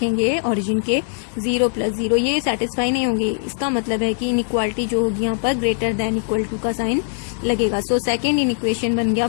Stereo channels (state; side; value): silent; right; digital silence